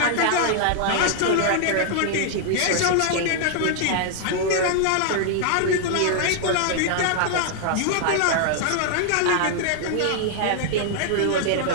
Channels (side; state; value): both; different; correlation -0.01